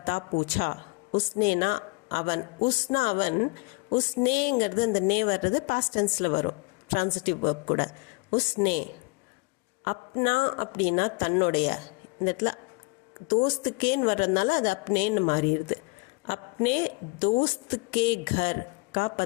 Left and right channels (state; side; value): quieter; right; 28.3 dB